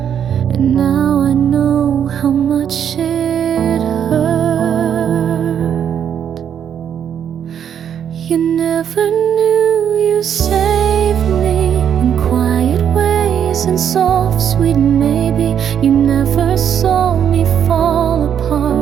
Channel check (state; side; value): quieter; left; 8.7 dB